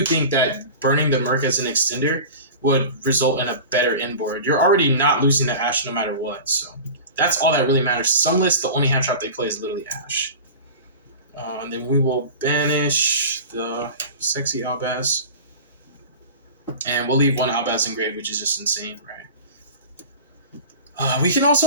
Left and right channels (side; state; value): both; inverted; correlation -0.34